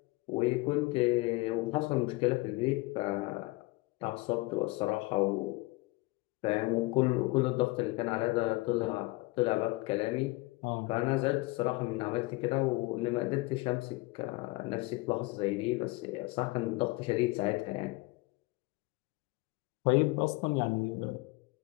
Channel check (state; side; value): quieter; right; 22.9 dB